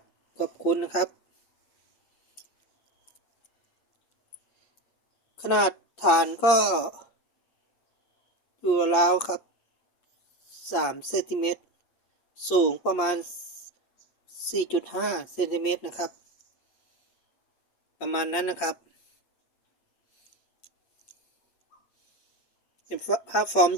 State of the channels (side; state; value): right; late; 8.5 ms